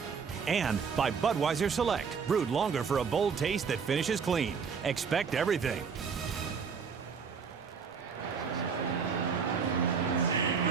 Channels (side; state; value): left; quieter; 6.0 dB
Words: And by Budweiser Select, brewed longer for a bold taste that finishes clean. Expect everything.